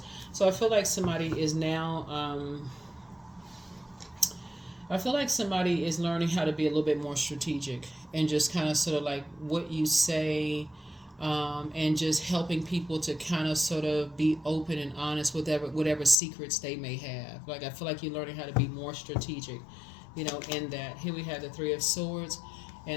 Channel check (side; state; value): right; drops out; at 16.2 s